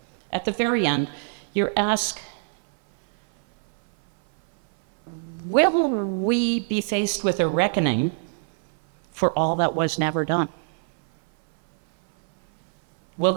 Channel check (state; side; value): silent; left; 58 dB below the other